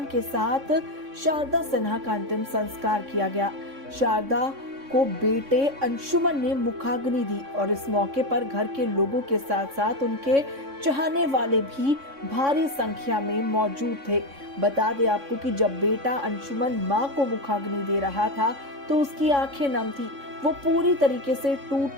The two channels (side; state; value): left; late; 3.6 ms